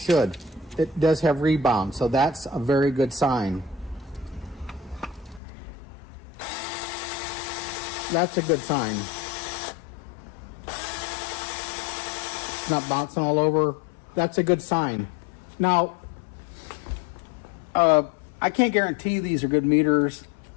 It does have rebound, so that's a very good sign. That's a good sign. It's not bouncing all over. That's a good sign. Now, I can't guarantee these are good meters.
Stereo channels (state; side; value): drops out; right; at 5.4 s